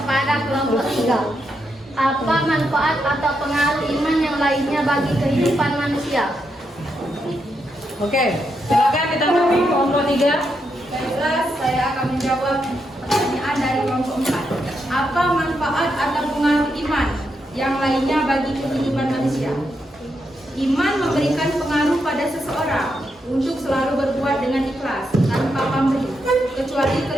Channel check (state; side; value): normal; both; correlation 0.82